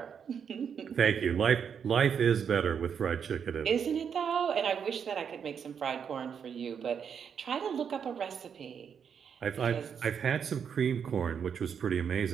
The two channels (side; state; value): left; quieter; 7.3 dB